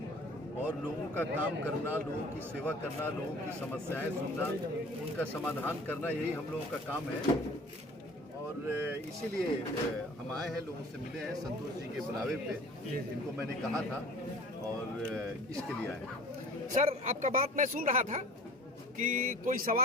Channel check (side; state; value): both; normal; correlation 0.45